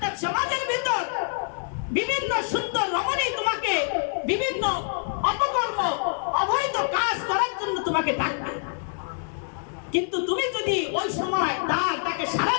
সমাজের ভিতর বিভিন্ন সুন্দর রমণী তোমাকে বিভিন্ন অপকর্ম, অবৈধ কাজ করার জন্য তোমাকে ডাকবে, কিন্তু তুমি যদি ওই সময় তাকে সাড়া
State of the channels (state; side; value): silent; right; digital silence